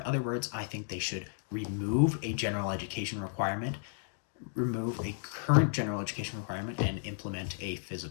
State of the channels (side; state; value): right; silent; digital silence